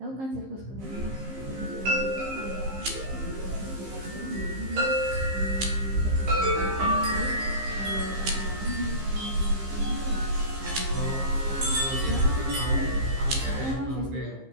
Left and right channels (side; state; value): left; late; 15 ms